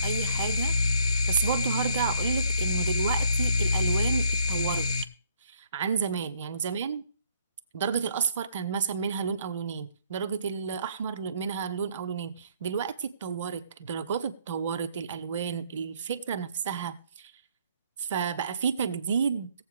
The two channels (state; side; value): inverted; both; correlation -0.66